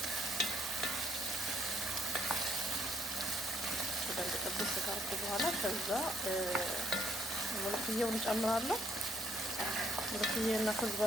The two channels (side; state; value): both; normal; correlation 0.68